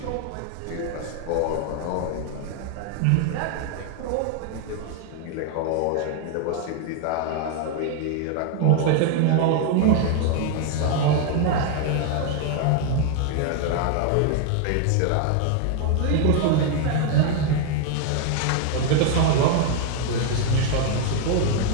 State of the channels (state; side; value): different; both; correlation 0.01